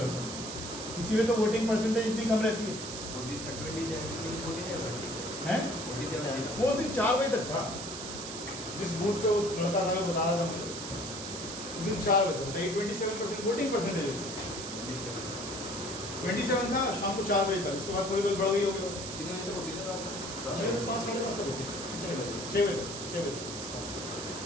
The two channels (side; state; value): right; noise; hiss, 8 dB below the sound